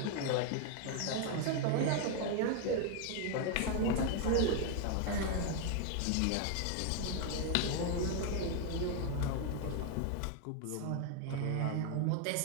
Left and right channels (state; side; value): different; both; correlation 0.01